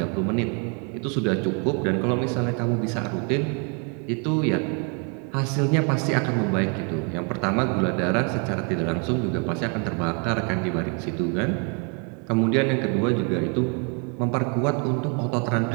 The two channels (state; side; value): quieter; left; 36.5 dB